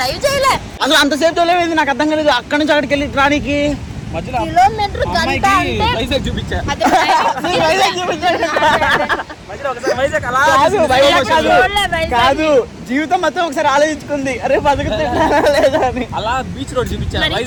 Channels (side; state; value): both; identical; correlation 1.00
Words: చేయలే. అసలు అంతసేపు తోలేది నాకు అర్థం కాలేదు. అక్కడి నుంచి అక్కడికి వెళ్ళి రానికి కిలోమీటర్ గంట అంటే వైజాగ్ అలా కాదు, వైజాగ్ కాదు. చూడలే వైజాగ్. కాదు జీవితం మొత్తం ఒకసారి ఆలోచించుకుంది అరే బతుకుతున్నా లేదా అని. అలా బీచ్ రోడ్ చూపించాను మరి